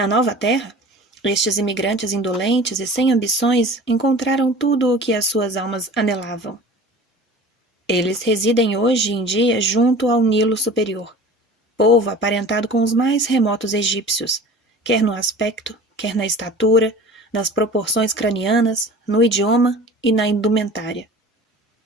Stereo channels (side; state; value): both; normal; correlation 0.41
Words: nova terra, estes imigrantes indolentes e sem ambições encontraram tudo o que as suas almas anelavam. Eles residem hoje em dia junto ao Nilo Superior, povo aparentado com os mais remotos egípcios, quer no aspecto, quer na estatura, nas proporções cranianas, no idioma e na indumentária.